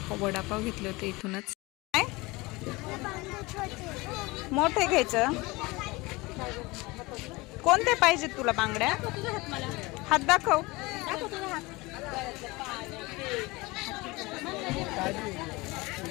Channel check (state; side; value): quieter; right; 23.0 dB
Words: वडापाव घेतले होते इथूनच. काय मोठे घ्यायचं? कोणते पाहिजे तुला बांगड्या? हात दाखव.